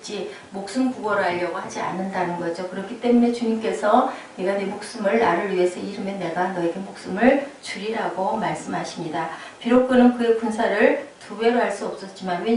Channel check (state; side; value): identical; both; correlation 1.00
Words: 목숨 구걸을 하려고 하지 않는다는 거죠. 그렇기 때문에 주님께서 네가 네 목숨을 나를 위해서 잃으면 내가 너에게 목숨을 주리라고 말씀하십니다. 비록 그는 그의 군사를 2배로 할 수 없었지만